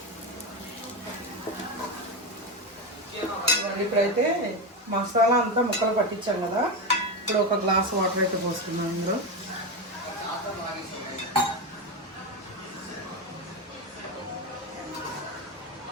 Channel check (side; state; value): both; normal; correlation 0.15